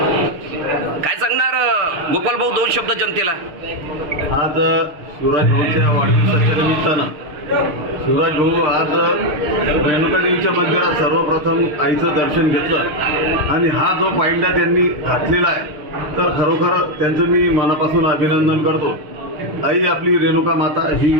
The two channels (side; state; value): left; late; 6.6 ms